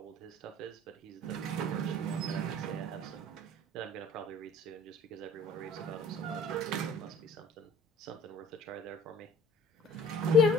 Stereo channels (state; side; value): normal; both; correlation 0.50